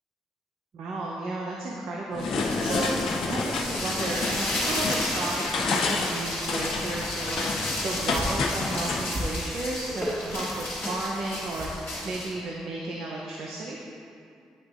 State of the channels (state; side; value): normal; both; correlation 0.67